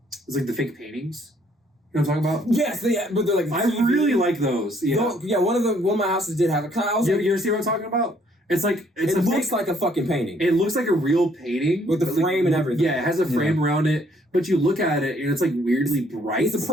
it's like the fake paintings. You know what I'm talking about? Yes, yeah, but they're like I really like those. Yeah. No, yeah, one of my houses did have a kind of, You ever see what I'm talking about? It's like it looks like a fucking painting. it looks like a real painting With the but, like, frame and everything. Yeah, it has a frame around it, but you look at it and it's like weirdly bright. It's a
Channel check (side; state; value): both; normal; correlation 0.65